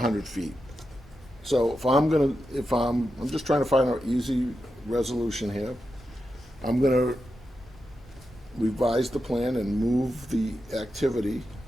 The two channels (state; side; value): normal; both; correlation 0.89